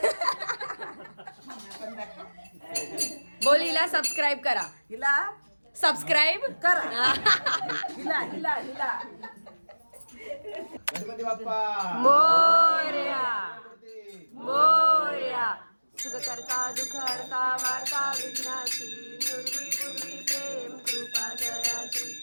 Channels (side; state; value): both; inverted; correlation -1.00